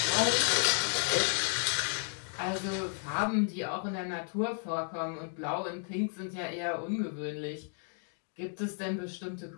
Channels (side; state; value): right; silent; 56 dB below the other